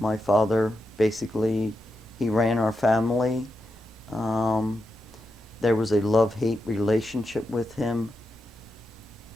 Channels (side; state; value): both; normal; correlation 0.87